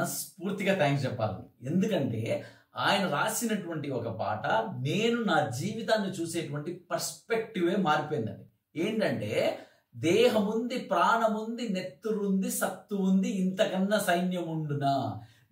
థ్యాంక్స్ చెప్పాలి. ఎందుకంటే ఆయన రాసినటువంటి ఒక పాట నేను నా జీవితాన్ని చూసేటువంటి పర్స్పెక్టివే మారిపోయిందండి. ఏంటంటే దేహముంది, ప్రాణముంది, నెత్తురుంది, సత్తు ఉంది, ఇంతకన్నా సైన్యం ఉండునా,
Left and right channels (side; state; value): both; identical; correlation 1.00